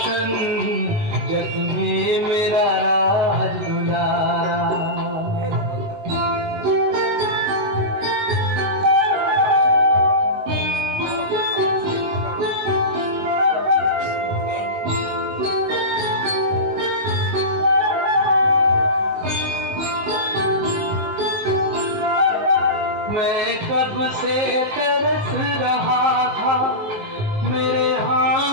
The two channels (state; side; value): late; left; 19 ms